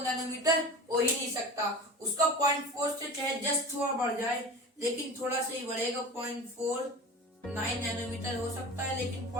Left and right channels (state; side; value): normal; both; correlation 0.34